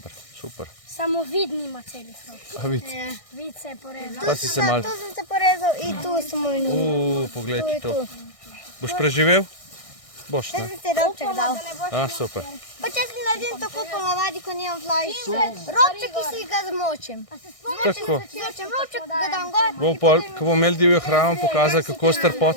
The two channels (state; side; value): late; right; 1.6 ms